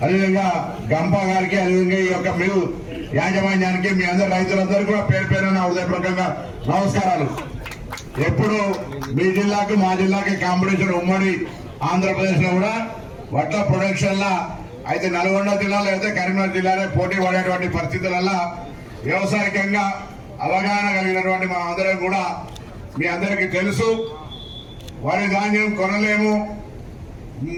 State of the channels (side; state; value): both; identical; correlation 1.00